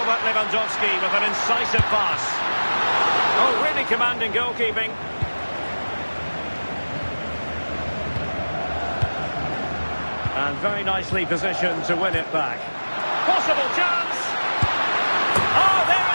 Lewandowski with an incisive pass. Oh, really commanding goalkeeping. And very nicely positioned to win it back. Possible chance! Oh, there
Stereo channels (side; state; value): both; inverted; correlation -1.00